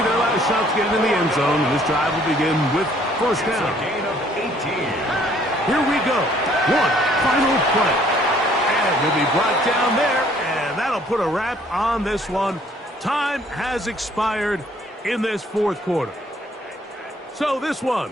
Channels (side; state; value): both; normal; correlation 0.61